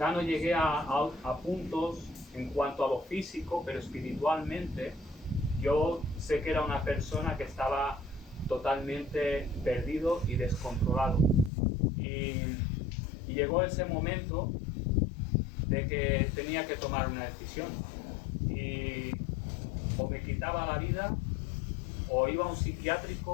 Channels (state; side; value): drops out; right; at 11.5 s